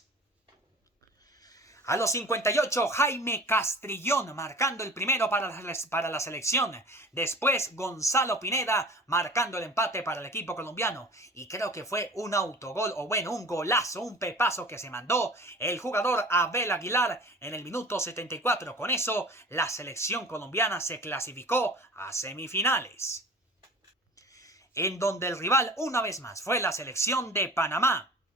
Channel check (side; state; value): both; normal; correlation 0.41